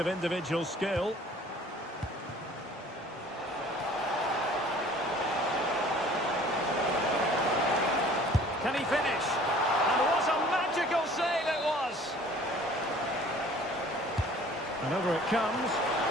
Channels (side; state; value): both; normal; correlation 0.51